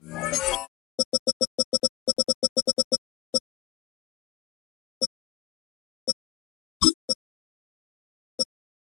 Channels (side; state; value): right; quieter; 16.5 dB